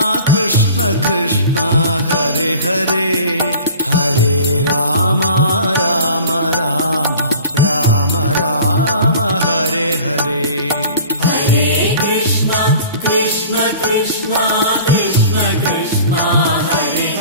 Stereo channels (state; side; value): inverted; both; correlation -0.43